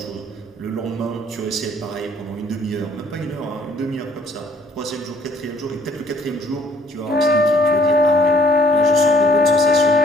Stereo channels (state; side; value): normal; both; correlation 0.60